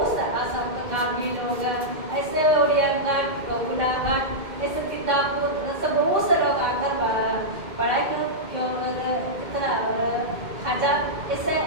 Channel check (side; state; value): left; late; 2.1 ms